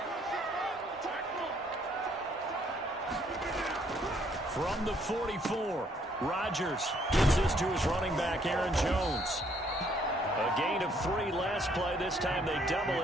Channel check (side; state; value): both; normal; correlation 0.66